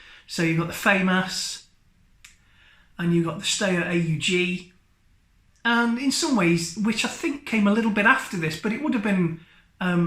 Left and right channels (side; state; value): both; identical; correlation 1.00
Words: So you've got the FAMAS, and you've got the Steyr AUG, and in some ways, which I think came a little bit after this, but it would have been